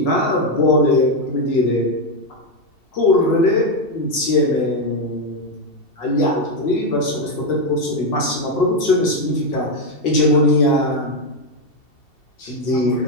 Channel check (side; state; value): right; late; 2.7 ms